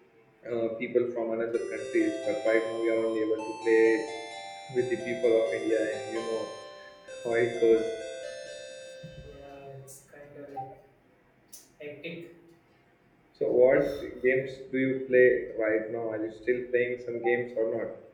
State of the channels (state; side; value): identical; both; correlation 1.00